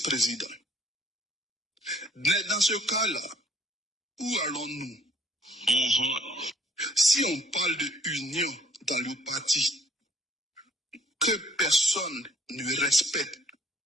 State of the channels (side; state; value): both; normal; correlation 0.59